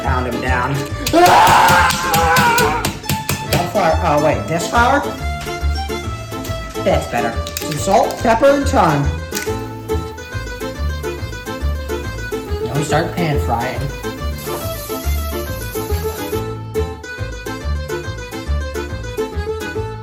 pound him down. Flour. Oh wait, this flour? That's better. Some salt, pepper, and thyme. Now we start pan frying.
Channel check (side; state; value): both; identical; correlation 1.00